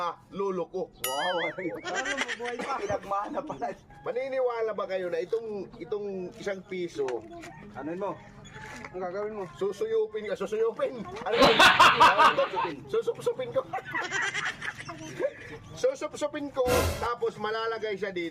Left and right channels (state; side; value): identical; both; correlation 1.00